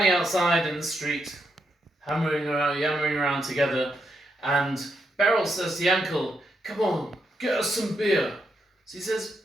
outside in the street, yammering around together, and Beryl says to Yankel, "Come on, get us some beer." So he says,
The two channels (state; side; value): normal; both; correlation 0.81